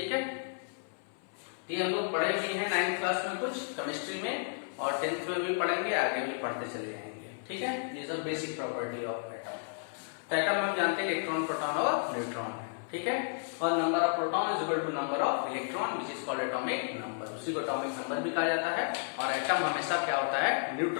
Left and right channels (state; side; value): silent; right; 55 dB below the other